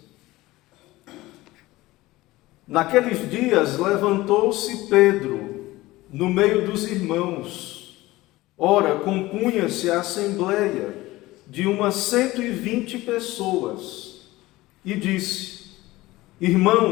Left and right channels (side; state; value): right; quieter; 18.7 dB